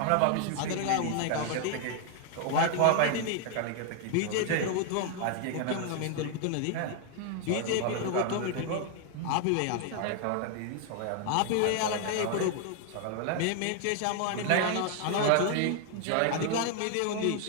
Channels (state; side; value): different; both; correlation 0.00